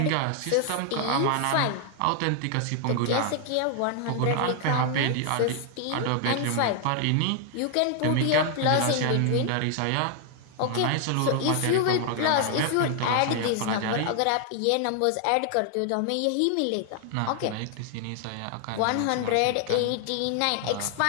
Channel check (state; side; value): different; both; correlation 0.00